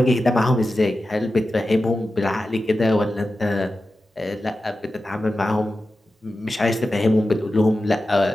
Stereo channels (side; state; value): both; normal; correlation 0.93